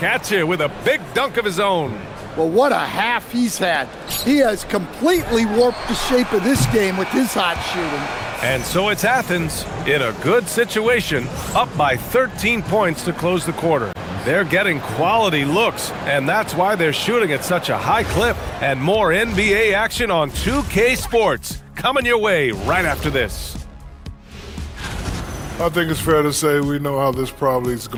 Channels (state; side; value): identical; both; correlation 1.00